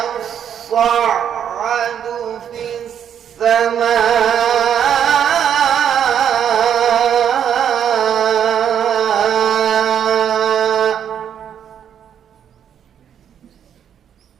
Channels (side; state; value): left; quieter; 8.9 dB